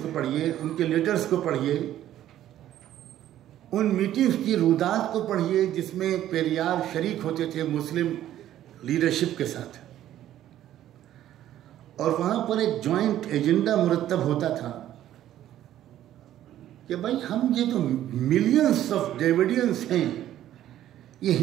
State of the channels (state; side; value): quieter; left; 12.4 dB